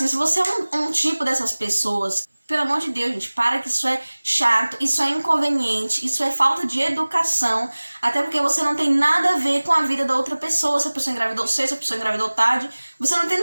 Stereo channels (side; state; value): both; inverted; correlation -1.00